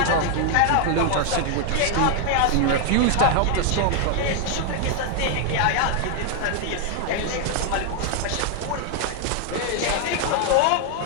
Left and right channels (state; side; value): different; both; correlation 0.00